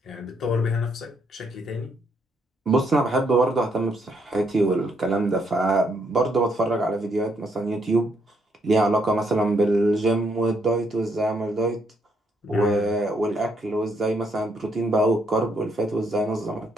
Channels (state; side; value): normal; both; correlation 0.74